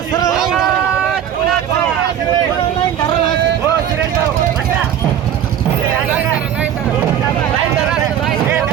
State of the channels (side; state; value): left; quieter; 9.8 dB